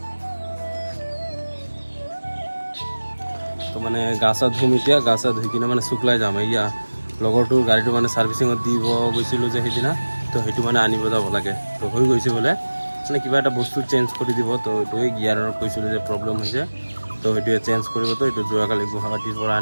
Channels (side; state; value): both; inverted; correlation -1.00